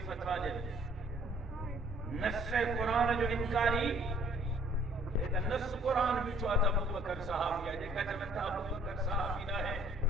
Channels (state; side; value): normal; both; correlation 0.59